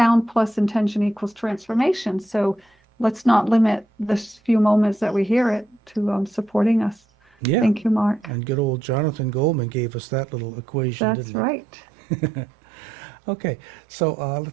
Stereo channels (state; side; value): drops out; left; at 9.9 s